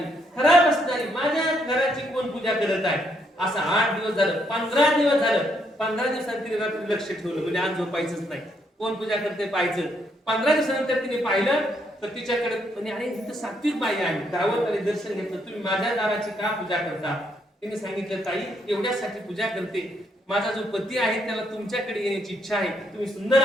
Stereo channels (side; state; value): both; normal; correlation 0.74